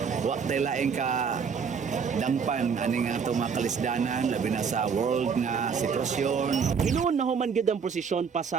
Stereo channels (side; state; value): left; quieter; 6.2 dB